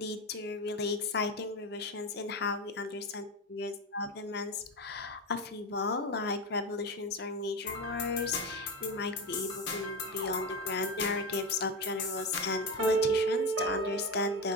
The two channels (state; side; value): normal; both; correlation 0.18